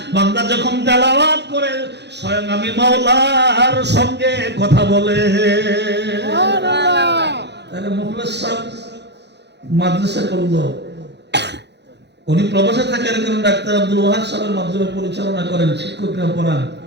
বান্দা যখন তেলাওয়াত করে, স্বয়ং আমি মাওলার সঙ্গে কথা বলে। তাহলে মুখলেস সাহেব মাদ্রাসা করলো, উনি প্রবাসে থাকেন, কারণ ডাক্তার আব্দুল ওয়াহাব সাহেবের মাধ্যমে পরিচালনা করেন, শিক্ষকরা পড়ান।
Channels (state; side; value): late; left; 0.50 ms